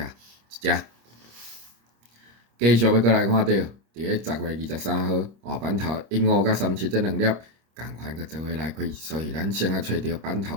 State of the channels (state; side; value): late; left; 26 ms